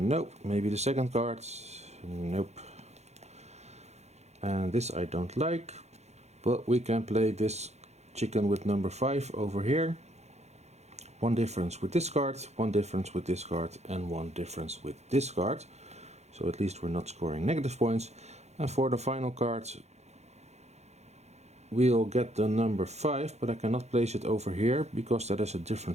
Maybe the second card. Nope. And this I don't like. But we can play this chicken with number 5 over here. One difference with this card, one difference with this card, and one difference with this card. So at least we're not scoring negative points. And for the final card, we'll get the number 5, but I cannot place it over here because that is a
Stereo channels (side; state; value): left; late; 0.32 ms